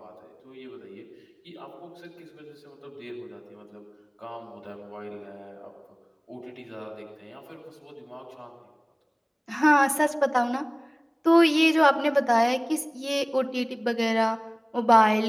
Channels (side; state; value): both; identical; correlation 1.00